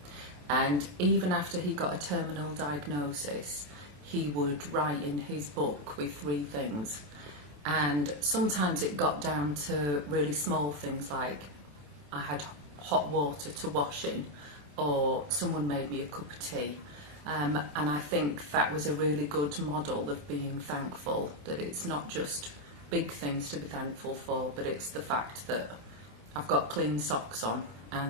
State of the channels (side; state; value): left; late; 27 ms